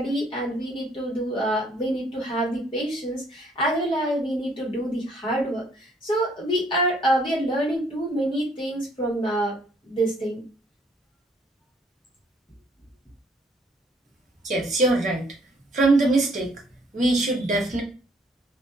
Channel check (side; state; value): both; normal; correlation 0.64